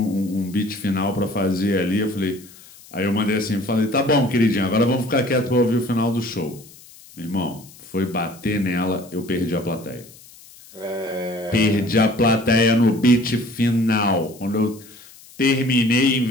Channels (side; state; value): left; noise; hiss, 22 dB below the sound